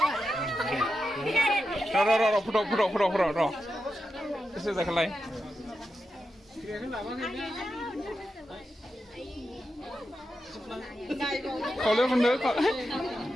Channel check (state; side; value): normal; both; correlation 0.89